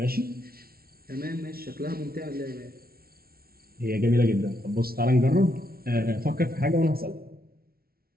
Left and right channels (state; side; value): late; left; 0.44 ms